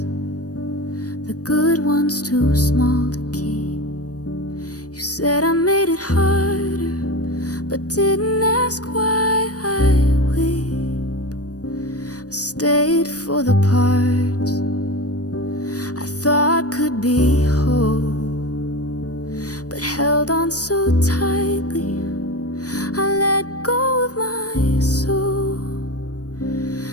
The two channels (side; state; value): right; late; 0.67 ms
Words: the good ones too small to keep. You said I made it harder, but didn't ask why I weep. I stayed for the parts I thought could be whole, but held on so tightly I let go of my soul.